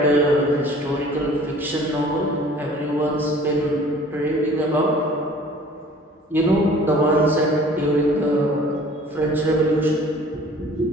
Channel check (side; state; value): both; normal; correlation 0.50